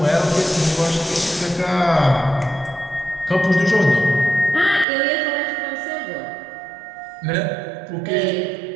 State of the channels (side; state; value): left; drops out; at 4.9 s